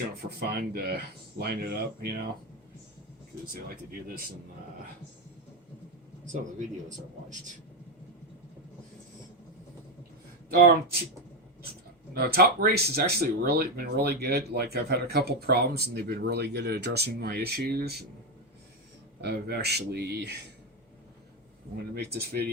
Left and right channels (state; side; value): normal; both; correlation 0.10